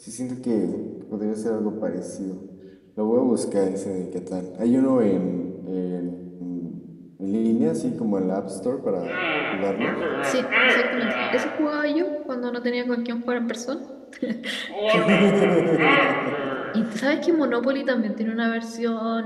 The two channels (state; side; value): identical; both; correlation 1.00